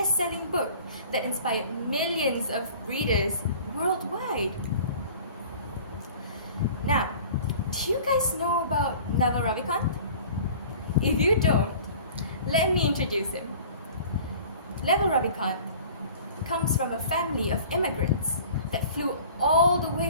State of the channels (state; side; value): inverted; both; correlation -0.45